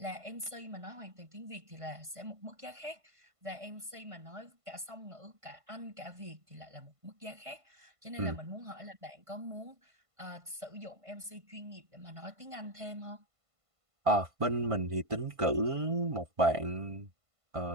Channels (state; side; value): late; left; 1.5 ms